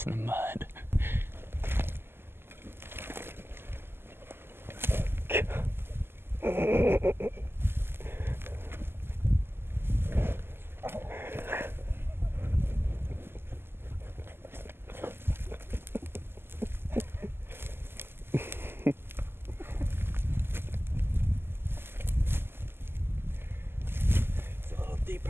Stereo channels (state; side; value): late; left; 0.11 ms